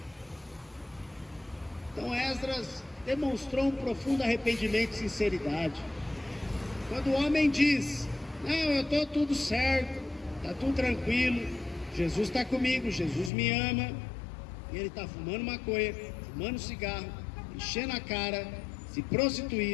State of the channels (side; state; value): right; drops out; at 13.3 s